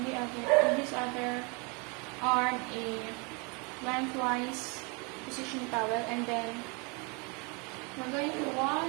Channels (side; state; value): left; quieter; 31.6 dB